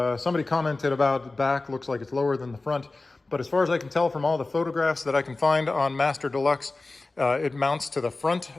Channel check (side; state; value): right; quieter; 3.3 dB